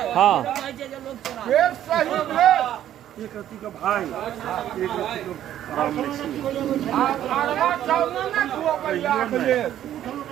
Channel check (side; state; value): left; quieter; 11.6 dB